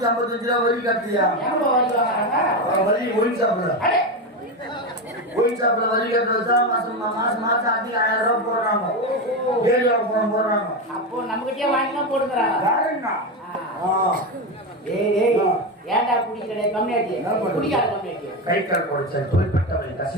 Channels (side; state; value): both; normal; correlation 0.15